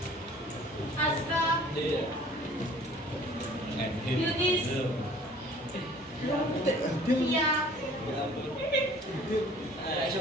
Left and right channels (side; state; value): both; normal; correlation 0.51